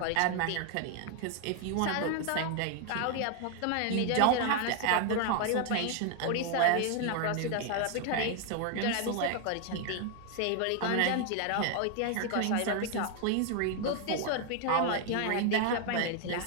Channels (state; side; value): different; both; correlation 0.00